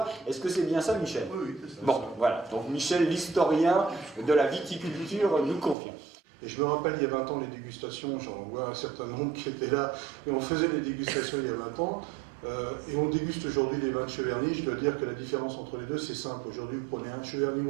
Est-ce que c'est bien ça, Michel? Oui, c'est ça. Bon, voilà. Donc Michel, l'historien de la viticulture, nous confirme. Et je me rappelle, il y a 20 ans, les dégustations, j'en vois un certain nombre qui étaient là, et on faisait les dégustations il y a 20 ans, et on déguste aujourd'hui les vins de Cheverny. Je dois dire que la différence entre les deux, c'est simple. Aujourd'hui, vous prenez un Cheverny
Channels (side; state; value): left; drops out; at 5.8 s